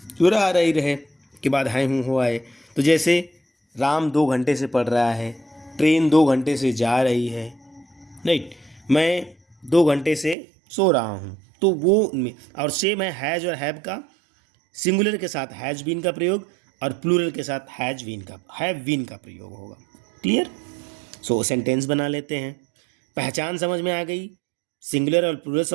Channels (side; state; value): left; drops out; at 10.4 s